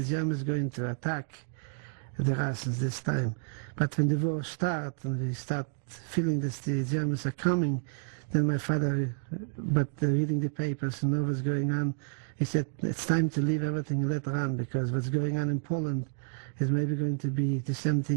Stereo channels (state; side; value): silent; left; digital silence